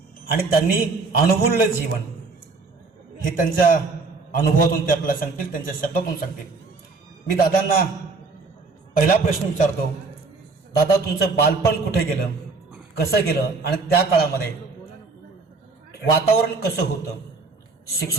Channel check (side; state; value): left; quieter; 4.0 dB